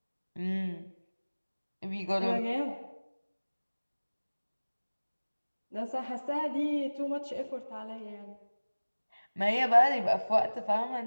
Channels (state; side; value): inverted; both; correlation -1.00